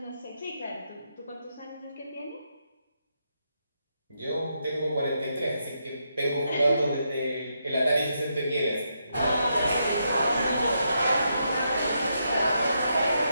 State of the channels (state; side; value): inverted; both; correlation -0.81